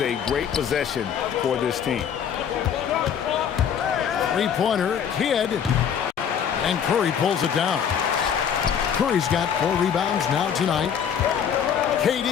great possession for this team. 3-pointer, Kidd. And Curry pulls it down. Curry's got 4 rebounds now tonight.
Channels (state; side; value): quieter; right; 8.1 dB